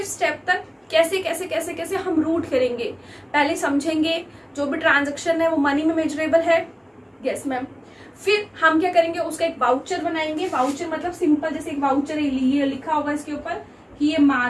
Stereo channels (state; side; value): identical; both; correlation 1.00